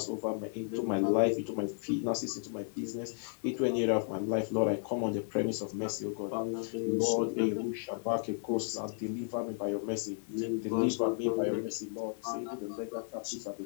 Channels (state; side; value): silent; right; digital silence